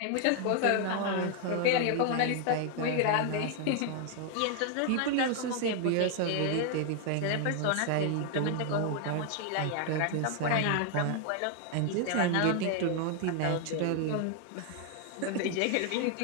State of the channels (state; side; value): different; both; correlation 0.00